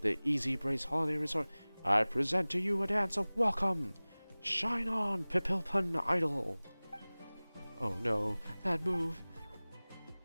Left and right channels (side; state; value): both; inverted; correlation -1.00